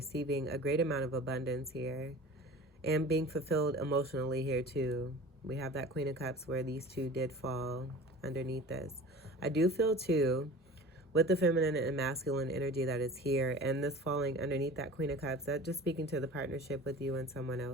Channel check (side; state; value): both; normal; correlation 0.40